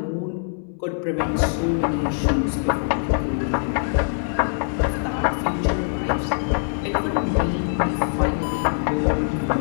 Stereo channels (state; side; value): silent; right; 61 dB below the other